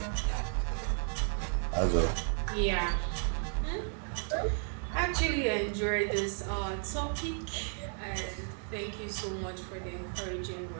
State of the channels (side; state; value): left; silent; 55 dB below the other